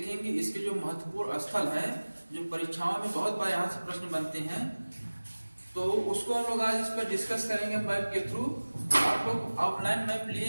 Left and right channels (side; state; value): both; inverted; correlation -1.00